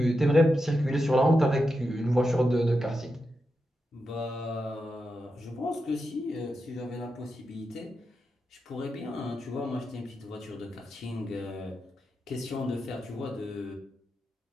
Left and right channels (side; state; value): both; normal; correlation 0.88